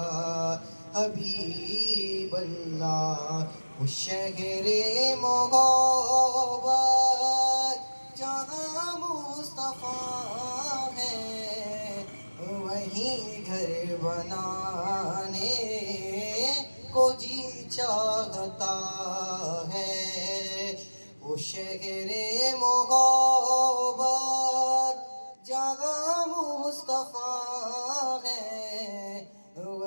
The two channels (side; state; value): both; inverted; correlation -1.00